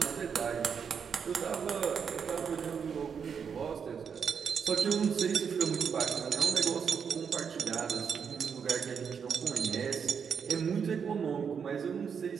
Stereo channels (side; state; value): left; quieter; 6.7 dB